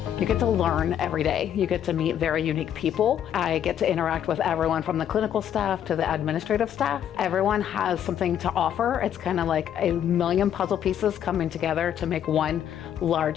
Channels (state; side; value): quieter; right; 9.9 dB